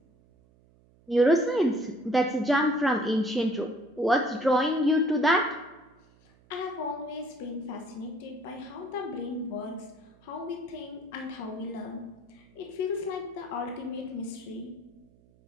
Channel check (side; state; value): right; noise; hum, 30 dB below the sound